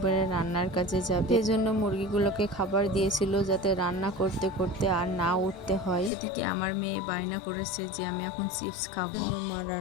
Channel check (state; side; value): drops out; right; at 6.1 s